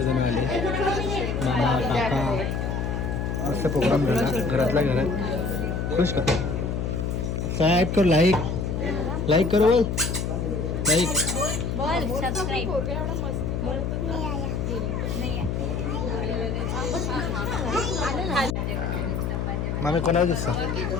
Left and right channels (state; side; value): noise; left; hum, 1 dB below the sound